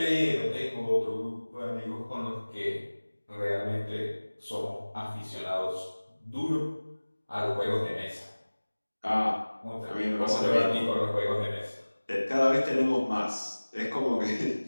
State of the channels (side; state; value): both; inverted; correlation -1.00